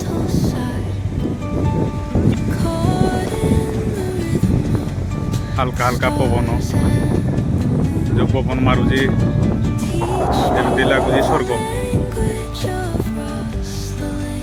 हल्का हल्का पवन जो पवन मारुची जमी लगुच स्वर्ग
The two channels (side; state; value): both; identical; correlation 1.00